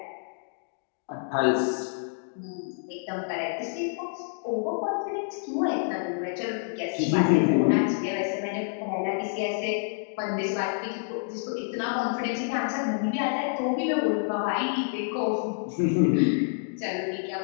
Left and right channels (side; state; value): right; silent; digital silence